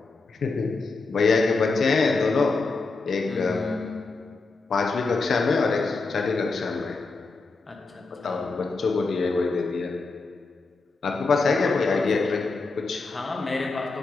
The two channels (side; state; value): right; quieter; 3.8 dB